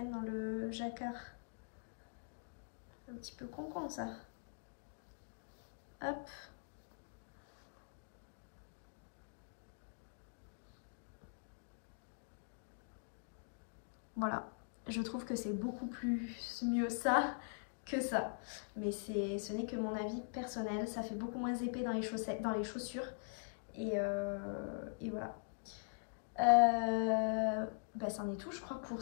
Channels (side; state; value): right; silent; digital silence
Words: dans le jacquard. Un petit peu con ça. Hop. Voilà. Je trouve que c'est beaucoup plus mieux ça que ça. Mais ce n'est que mon avis personnel. Ça fait beaucoup moins épais dans les chaussettes, dans les chaussures. Et voilà. Bah, c'en est tout, je crois, pour